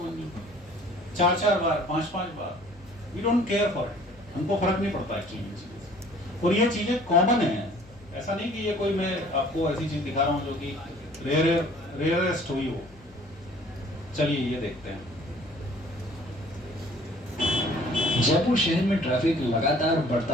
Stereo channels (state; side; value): noise; left; hum, 25 dB below the sound